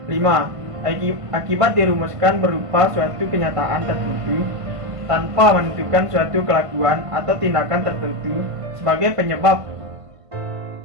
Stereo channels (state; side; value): late; left; 1.5 ms